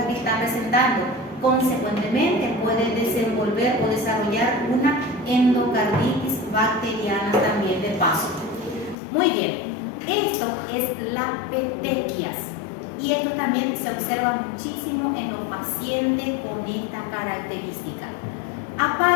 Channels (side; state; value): right; drops out; at 9.0 s